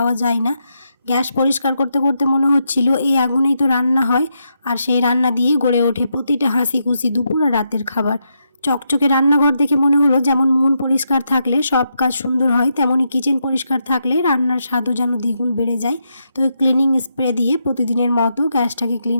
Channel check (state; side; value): inverted; both; correlation -0.82